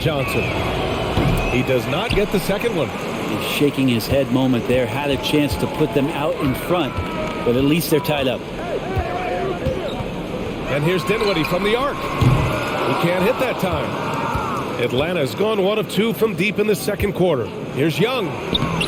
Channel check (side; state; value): both; identical; correlation 1.00